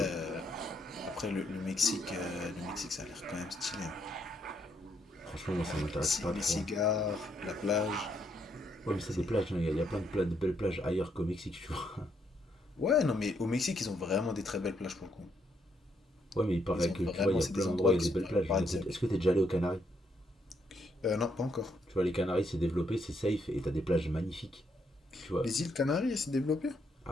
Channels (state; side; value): normal; both; correlation 0.75